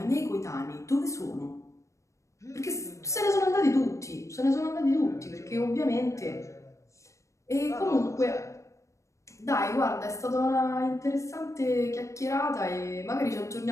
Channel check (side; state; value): right; late; 0.15 ms